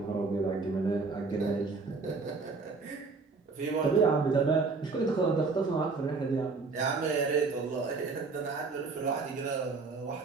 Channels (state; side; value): quieter; left; 4.3 dB